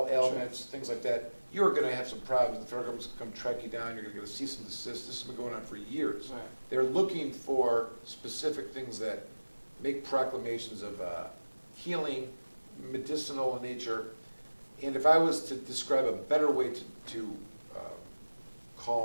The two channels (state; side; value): inverted; both; correlation -1.00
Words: ailments, things like that, you're going to have some problems. The federal government's going to come track you down. You're going to get a cease and desist. This has been going on for years. Right. They're looking for specific things that make proclamations of healing, medicinal in nature. And if I was to describe a better way to